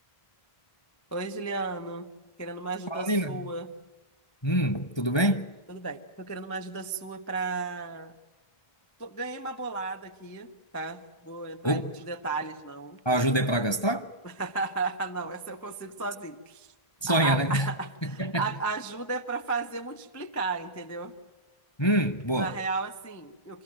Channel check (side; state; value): right; late; 1.3 ms